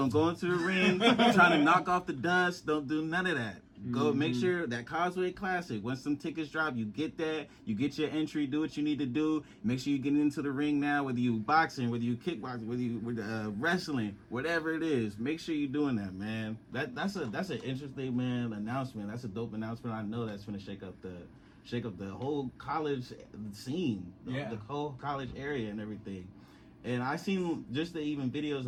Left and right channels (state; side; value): identical; both; correlation 1.00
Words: go into the ring trying to knock off the dust. Don't do none of that. Go make sure that Causeway Classic, once some tickets drop, you get that. You get your entry, do what you need to do. Make sure you get into the ring now, whether you boxing, whether you kickboxing, whether you wrestling, whatever it is. Make sure you're doing that, man. That's an interesting, man, announcement. That's a dope announcement. I know that's gonna shake up the whole college scene, the whole college area and everything. And I seen just the even videos